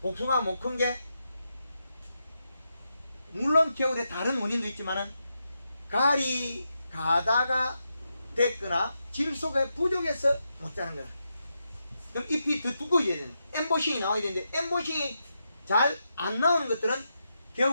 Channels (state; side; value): inverted; both; correlation -0.85